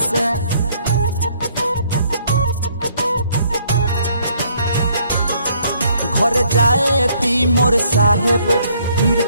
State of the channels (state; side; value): inverted; both; correlation -0.65